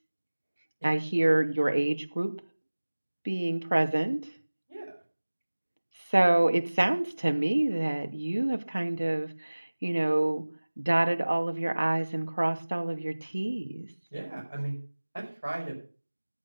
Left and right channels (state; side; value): inverted; both; correlation -1.00